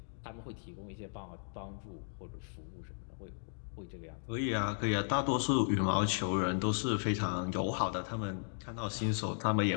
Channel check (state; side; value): silent; right; digital silence